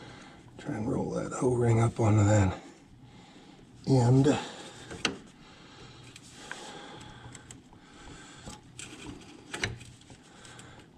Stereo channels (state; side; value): identical; both; correlation 1.00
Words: Try and roll that O-ring up onto that end. Is